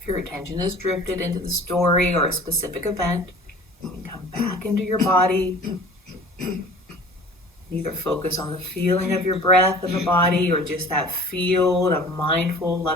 If your attention is drifted into the story or a specific event, you can come back into your body. Either focus on the feeling of your breath in the body or just that field of mindful,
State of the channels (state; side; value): normal; both; correlation 0.44